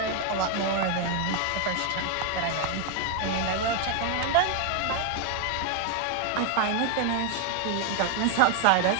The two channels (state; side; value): different; both; correlation 0.01